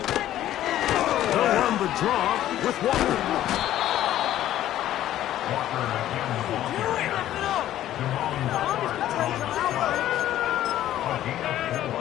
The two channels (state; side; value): quieter; right; 12.9 dB